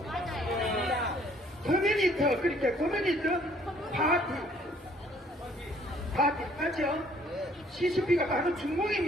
커뮤니티, 그렇게 커뮤니티 파티. 다 비슷하죠? CCP가 바로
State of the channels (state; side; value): normal; both; correlation 0.61